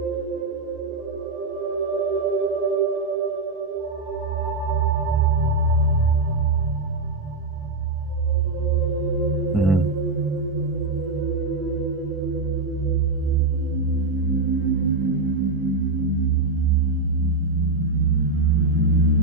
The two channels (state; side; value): quieter; left; 3.5 dB